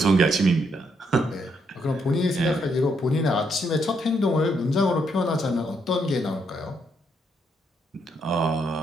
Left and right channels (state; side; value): normal; both; correlation 0.75